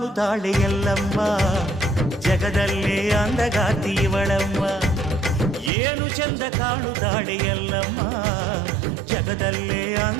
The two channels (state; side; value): drops out; left; at 5.7 s